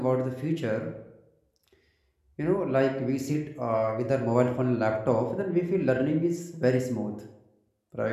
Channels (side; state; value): both; identical; correlation 1.00